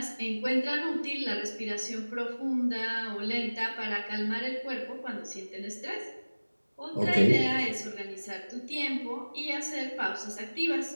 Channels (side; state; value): both; inverted; correlation -1.00